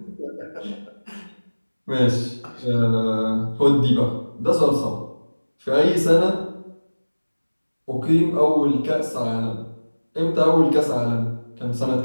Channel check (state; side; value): inverted; both; correlation -1.00